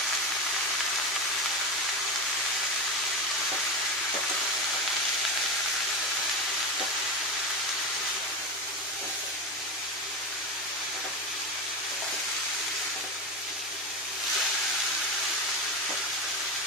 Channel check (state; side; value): normal; both; correlation 0.18